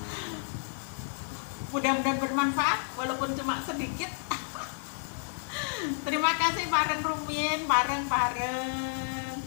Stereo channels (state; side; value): silent; right; digital silence